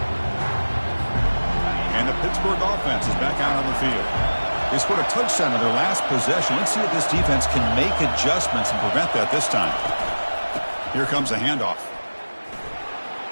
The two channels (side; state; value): both; inverted; correlation -1.00